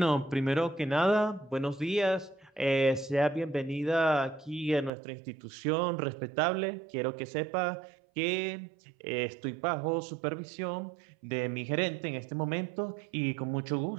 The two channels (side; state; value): left; drops out; at 4.9 s